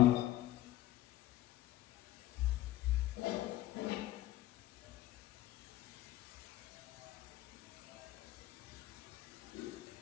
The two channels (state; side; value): quieter; right; 15.4 dB